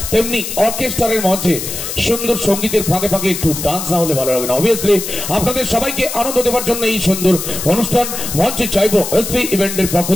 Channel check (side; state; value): left; noise; hiss, 6 dB below the sound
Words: তেমনি অর্কেস্ট্রারের মঞ্চে সুন্দর সঙ্গীতের ফাঁকে ফাঁকে একটু ডান্স না হলে ভালো লাগে না। অবভিয়াসলি আপনাদের সবাইকে আনন্দ দেওয়ার জন্য এই সুন্দর অনুষ্ঠান মঞ্চে চাইবো এসপি ইভেন্টের পক্ষ